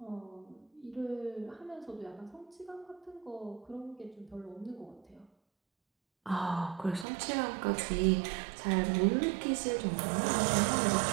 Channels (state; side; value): drops out; left; at 7.1 s